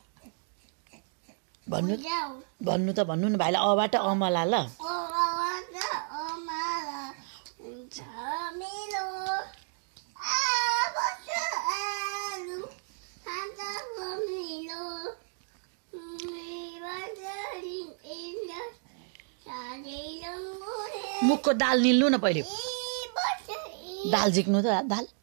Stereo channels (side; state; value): left; silent; digital silence